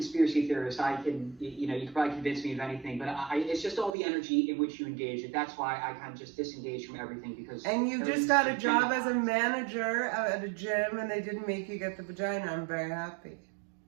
theorist. I can, you can probably convince me of anything, but it's just all the energy in which you engage it. That's why I kind of just disengage from everything because. And you just got a job as a manager at a gym, and they didn't make you get the vagina. I'm very happy.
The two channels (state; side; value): drops out; left; at 3.9 s